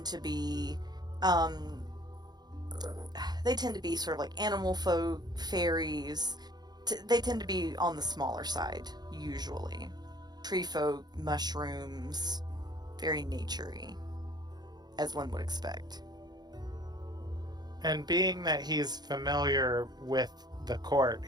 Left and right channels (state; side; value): late; left; 0.20 ms